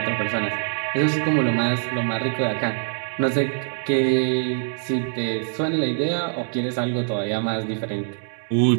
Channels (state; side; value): silent; left; digital silence